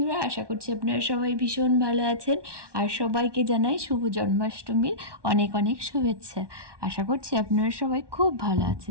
আশা করছি আপনারা সবাই ভীষণ ভালো আছেন। আর সবাইকে জানাই শুভ জন্মাষ্টমীর অনেক অনেক শুভেচ্ছা। আশা করছি আপনারা সবাই খুব ভালো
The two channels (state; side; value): late; left; 1.2 ms